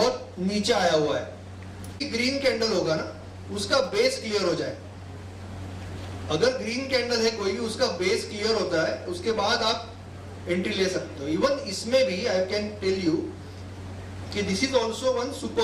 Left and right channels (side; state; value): both; identical; correlation 1.00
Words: नीचे आया हुआ है. ग्रीन कैंडल होगा ना, उसका बेस क्लियर हो जाए। अगर ग्रीन कैंडल है कोई भी, उसका बेस क्लियर होता है, उसके बाद आप एंट्री ले सकते हो। इवन इसमें भी आई कैन टेल यू कि this is also one